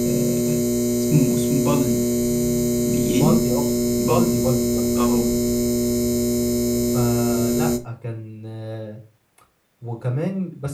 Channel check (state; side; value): identical; both; correlation 1.00